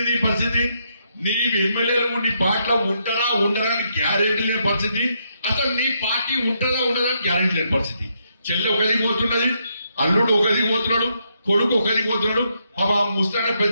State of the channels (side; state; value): both; inverted; correlation -0.77